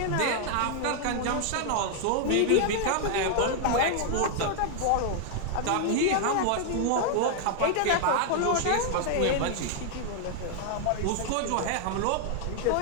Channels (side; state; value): both; different; correlation 0.00